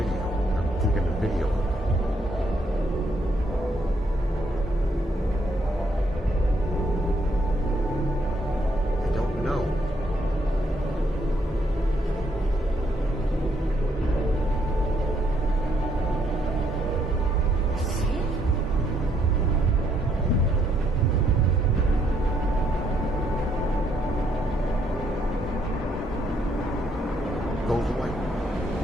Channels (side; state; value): both; normal; correlation 0.72